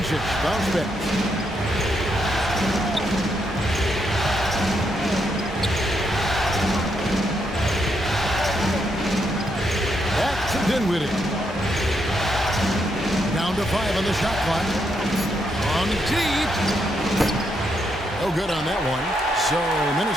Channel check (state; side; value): normal; both; correlation 0.78